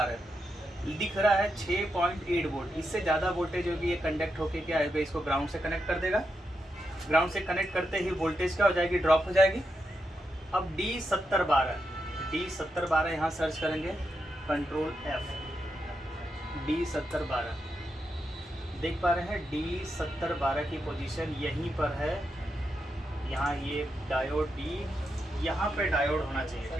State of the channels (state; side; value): normal; both; correlation 0.85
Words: दिख रहा है 6.8 वोल्ट। इससे ज़्यादा वोल्टेज होगी, ये कंडक्ट होके क्या है, इसको ग्राउंड से कनेक्ट कर देगा। ग्राउंड से कनेक्ट करते ही वोल्टेज क्या हो जाएगी? ड्रॉप हो जाएगी। अब D7012 यहाँ सर्च करेंगे, कंट्रोल F, D7012 देख पा रहे हैं। D7012 की पोजीशन यहीं पर है, यहाँ ये डायोड D, यहाँ पे डायोड होना चाहिए,